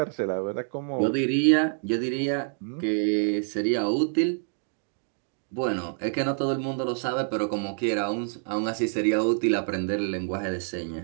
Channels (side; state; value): left; silent; digital silence